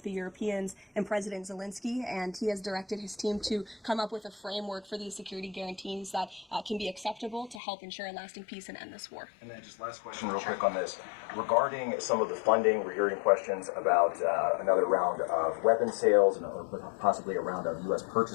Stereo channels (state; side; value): drops out; right; at 7.6 s